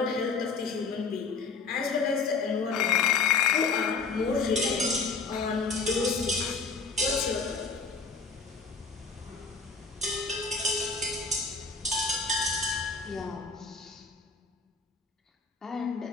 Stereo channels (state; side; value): quieter; right; 4.6 dB